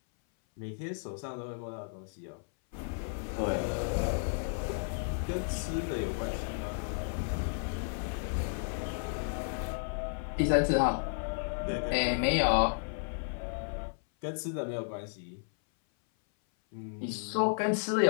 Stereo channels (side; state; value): right; silent; 56 dB below the other